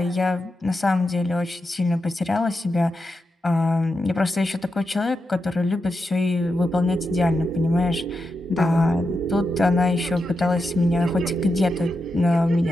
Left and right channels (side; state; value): both; normal; correlation 0.87